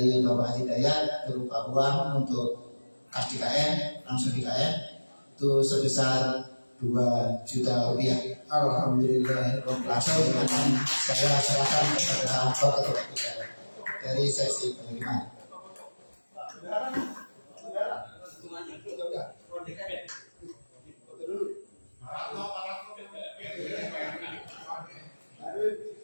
Bapak Haji Dayat berupa uang untuk kas DKM, langsung DKM itu sebesar 2 juta rupiah. Alhamdulillah. Langsung akan saya serahkan kepada Bapak Ketua dari seksi penerimaan.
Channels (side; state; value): both; inverted; correlation -1.00